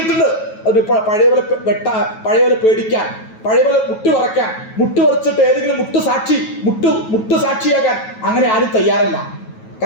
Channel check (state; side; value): late; right; 9.2 ms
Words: അത് പഴയപോലെ പേടിക്കാൻ, പഴയപോലെ മുട്ടുവറച്ചിട്ട് ഏതെങ്കിലും മുട്ടുസാക്ഷിയാകാൻ അങ്ങനെ ആരും തയ്യാറല്ല.